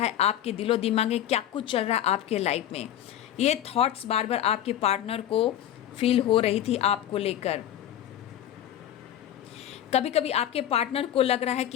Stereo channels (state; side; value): quieter; right; 11.4 dB